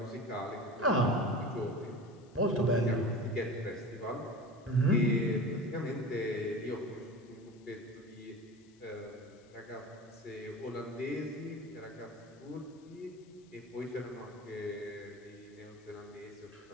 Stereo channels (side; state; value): left; noise; hiss, 30 dB below the sound